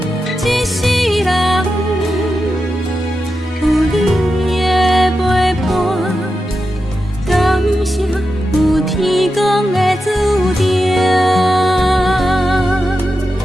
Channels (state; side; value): normal; both; correlation 0.89